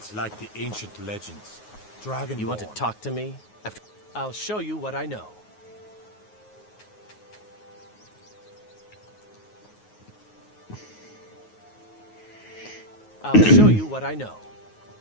like the ancient legends. Dragonborn. You want to talk to me? I'll show you what I know. I'll show you what I know.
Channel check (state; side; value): late; right; 9.4 ms